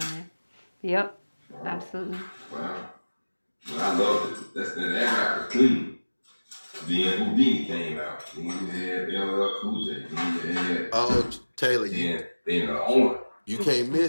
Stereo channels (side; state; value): both; inverted; correlation -1.00